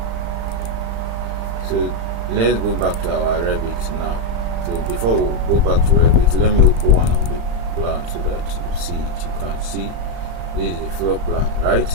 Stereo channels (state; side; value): late; left; 36 ms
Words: So let's go back to our Revit now. So before we go back to Revit, let me open one of the plans so that you see it. You can see this is the floor plan,